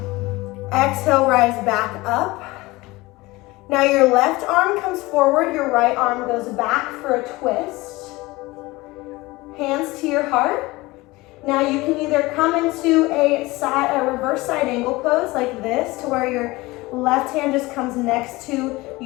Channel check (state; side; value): quieter; right; 21.1 dB